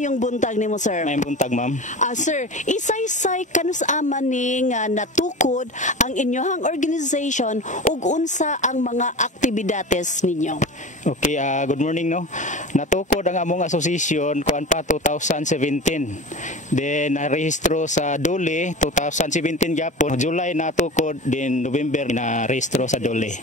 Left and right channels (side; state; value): both; normal; correlation 0.32